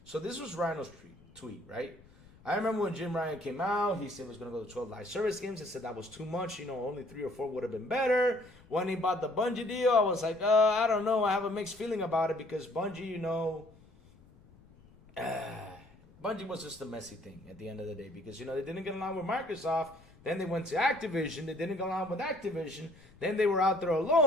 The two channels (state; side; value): noise; left; rumble, 25 dB below the sound